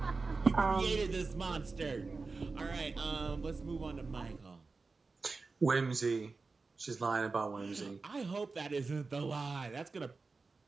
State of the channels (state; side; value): quieter; left; 4.1 dB